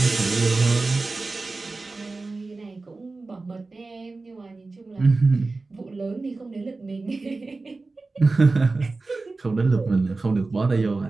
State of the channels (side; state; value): left; quieter; 3.6 dB